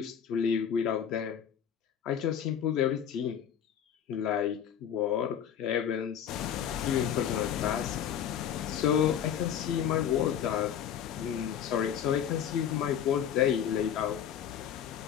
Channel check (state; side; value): quieter; right; 9.1 dB